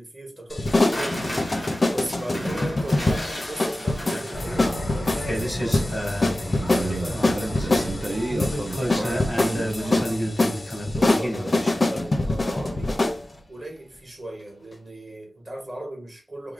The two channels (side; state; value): both; normal; correlation 0.95